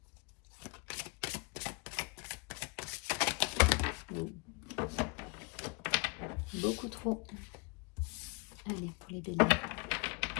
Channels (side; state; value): right; quieter; 30.2 dB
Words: Beaucoup trop. Allez, pour les béliers.